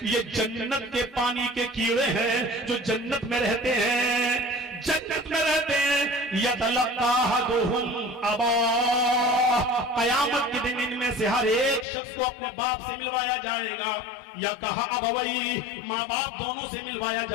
یہ جنت کے پانی کے کیڑے ہیں جو جنت میں رہتے ہیں، جنت میں رہتے ہیں۔ یتلقا احدہم اباہ، قیامت کے دن ان میں سے ہر ایک شخص کو اپنے باپ سے ملوایا جائے گا، یا کہا ابوئی، ماں باپ دونوں سے ملوایا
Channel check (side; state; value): right; drops out; at 11.9 s